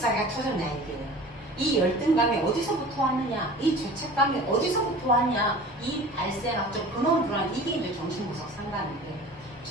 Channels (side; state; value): both; normal; correlation 0.41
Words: 터졌냐 이게. 이 열등감이 어디서부터 왔느냐, 이 죄책감이 어디서부터 왔냐, 이 발생학적 근원으로 들어가는 이게 이제 정신분석 상담인데